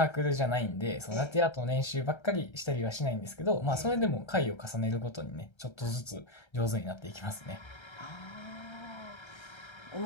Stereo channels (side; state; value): right; late; 1.3 ms